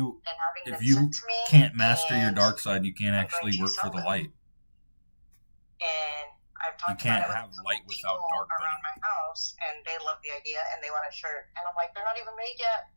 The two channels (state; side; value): inverted; both; correlation -1.00